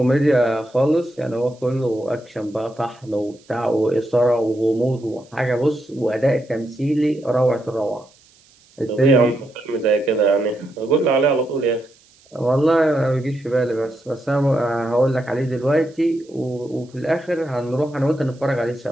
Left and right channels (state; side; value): noise; right; hiss, 30 dB below the sound